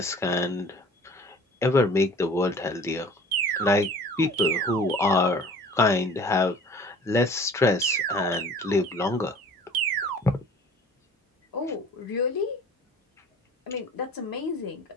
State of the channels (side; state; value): both; normal; correlation 0.47